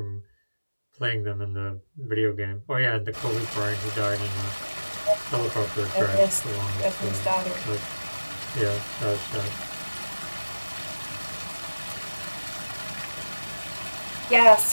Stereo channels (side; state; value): both; inverted; correlation -1.00